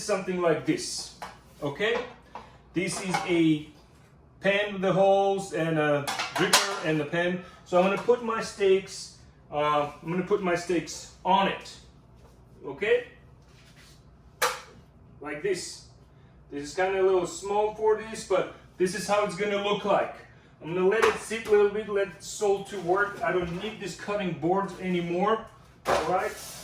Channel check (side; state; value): both; identical; correlation 1.00